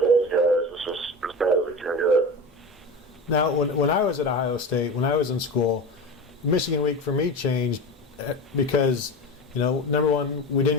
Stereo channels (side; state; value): both; normal; correlation 0.28